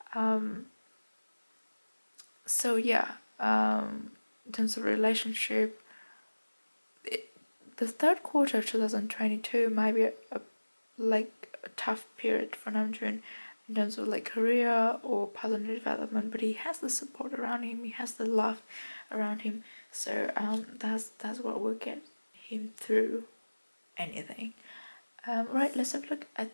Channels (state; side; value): inverted; both; correlation -1.00